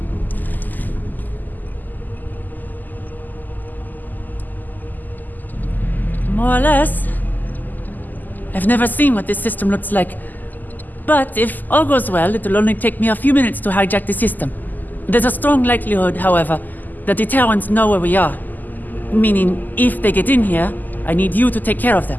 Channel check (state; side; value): late; right; 0.085 ms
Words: More or less. I've never seen what this system looks like. But if all goes well, it'll only take me a few minutes to hijack the system. There's a strong likelihood, however, that the Terrans know where we are. Meaning, if they get in here, I need you to take care of them.